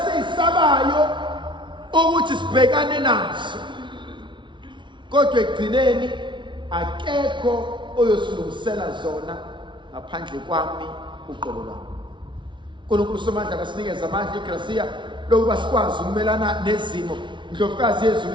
ukuthi sibhekane nazo, kodwa ekugcineni akekho oyosilungisela zona ngaphandle kwami uqobo lwami. uNkulunkulu somandla kasinikeza amandla igracia lokuba sikwazi ukumelana nezimo. Indlovukazi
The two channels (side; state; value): left; late; 0.24 ms